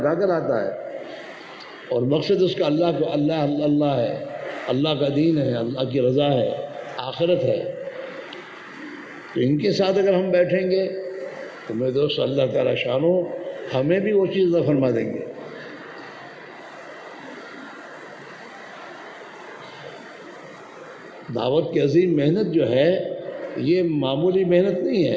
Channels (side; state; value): both; identical; correlation 1.00